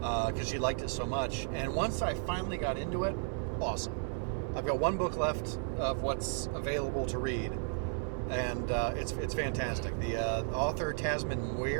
she liked it so much. And once I finally got into it, awesome. I've got 1 book left of what's available to read, and it's fantastic. The author, Tasman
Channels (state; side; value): silent; left; 55 dB below the other